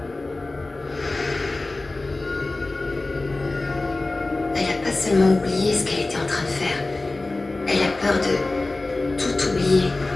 Elle a pas seulement oublié ce qu'elle était en train de faire. Elle a peur de tout oublier.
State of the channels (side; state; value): right; quieter; 3.1 dB